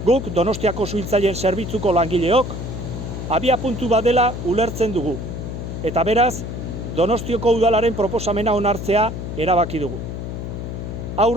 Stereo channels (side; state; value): left; noise; hum, 6 dB below the sound